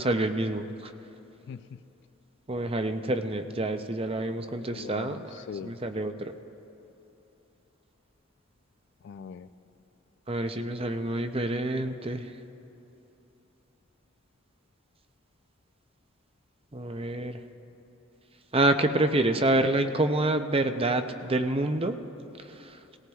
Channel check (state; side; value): normal; both; correlation 0.48